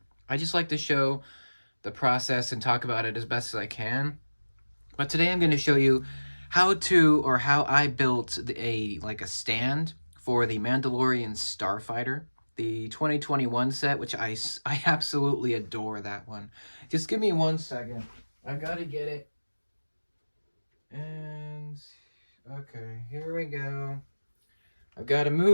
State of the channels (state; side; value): inverted; both; correlation -1.00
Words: I just like to show the process and talk about it as best as I can. But today I'm going to show you how I built a stand for the Mandalorian Starfighter, the 2021 set, which I absolutely adore that one. Just give me 1 second. I gotta get it. And okay, here we go. I've got to